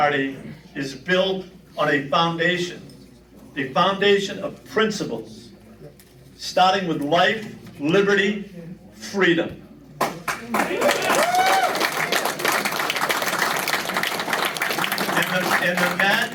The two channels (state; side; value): identical; both; correlation 1.00